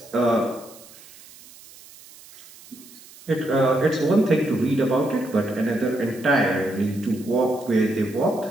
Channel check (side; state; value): right; noise; hiss, 21 dB below the sound